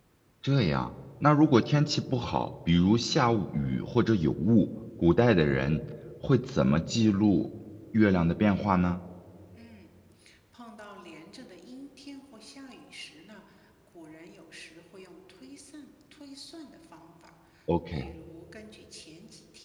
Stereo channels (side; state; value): both; identical; correlation 1.00